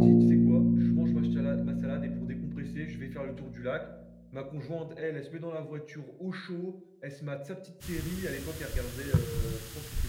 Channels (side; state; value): both; identical; correlation 1.00